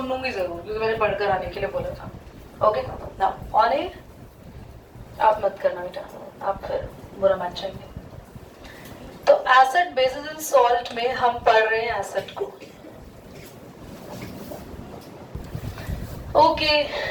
लूंगी जरूर क्योंकि मैंने पढ़कर आने के लिए बोला था। ओके ना, ऑन एयर आप मत करना बेटा, आप फिर बुरा मान जाएंगे। तो एसिड बेसिस एंड सॉल्ट में हम पढ़ रहे हैं एसिड को। ओके,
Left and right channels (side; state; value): both; identical; correlation 1.00